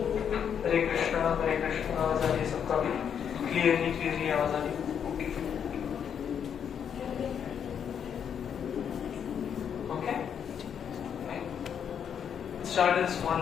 हरे कृष्णा आवाज आ रही है सबका भी? क्लियरली आवाज आ रही है? Start a small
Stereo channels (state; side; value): quieter; right; 8.0 dB